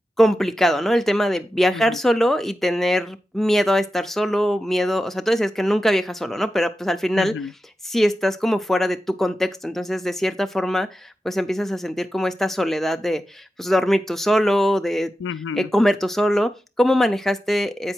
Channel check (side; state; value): both; normal; correlation 0.91